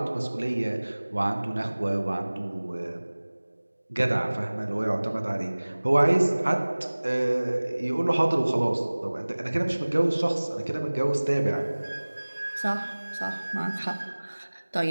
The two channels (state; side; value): inverted; both; correlation -1.00